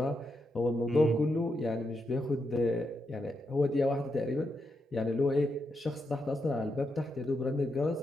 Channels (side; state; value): both; normal; correlation 0.83